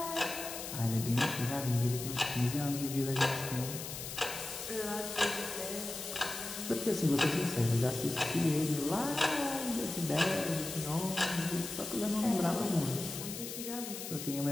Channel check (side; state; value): left; noise; hiss, 8 dB below the sound